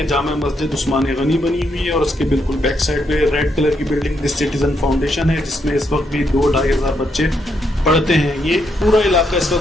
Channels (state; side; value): normal; both; correlation 0.77